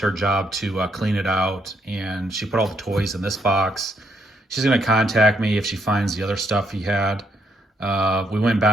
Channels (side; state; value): both; normal; correlation 0.74